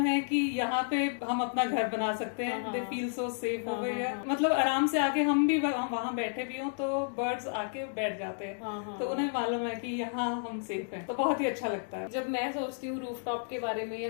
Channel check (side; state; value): right; silent; digital silence